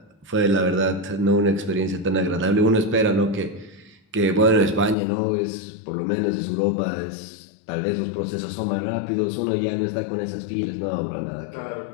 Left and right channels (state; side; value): drops out; right; at 5.0 s